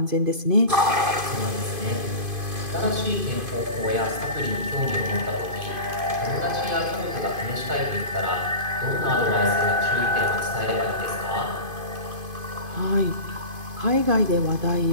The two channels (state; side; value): late; left; 2.5 ms